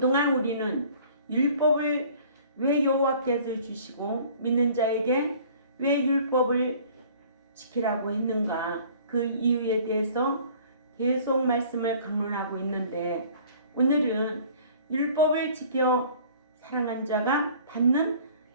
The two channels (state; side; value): inverted; both; correlation -0.51